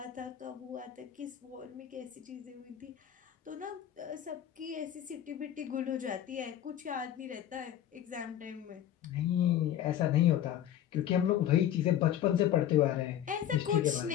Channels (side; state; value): right; quieter; 10.9 dB